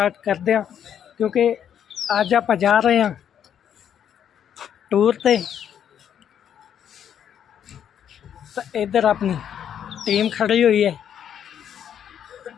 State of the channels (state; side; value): quieter; right; 9.2 dB